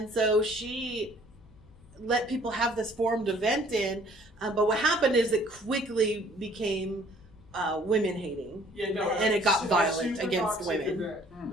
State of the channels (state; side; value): noise; left; hum, 26 dB below the sound